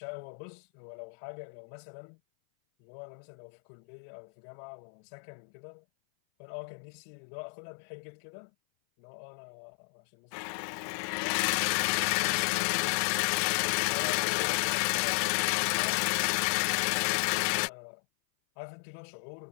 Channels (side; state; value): right; silent; 56 dB below the other